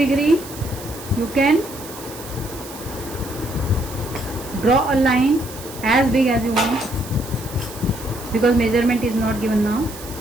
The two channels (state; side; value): noise; right; hiss, 15 dB below the sound